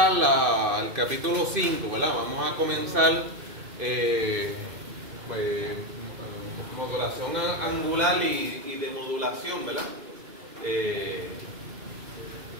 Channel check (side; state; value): left; late; 2.5 ms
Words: el capítulo 5, ¿verdad? Vamos a comenzar pues, modulación angular y de modulación, ¿verdad?